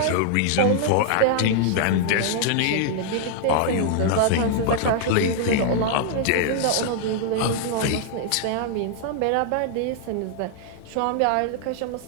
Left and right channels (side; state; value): both; different; correlation -0.01